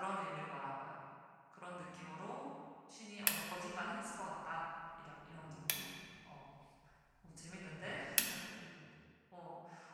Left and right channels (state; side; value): identical; both; correlation 1.00